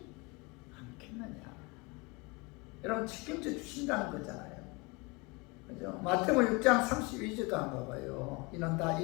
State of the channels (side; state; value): right; quieter; 27.3 dB